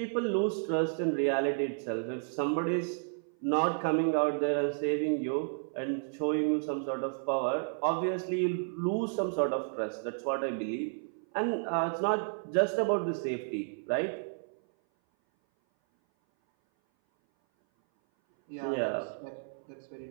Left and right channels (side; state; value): left; silent; 57 dB below the other